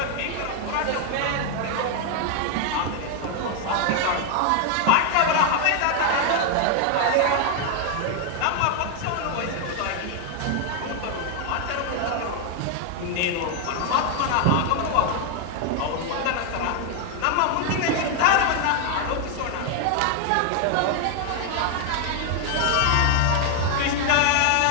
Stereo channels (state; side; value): different; both; correlation 0.01